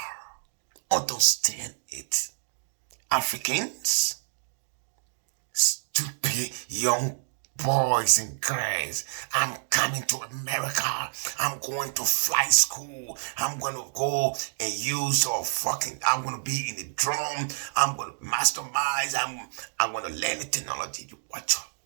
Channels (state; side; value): silent; left; digital silence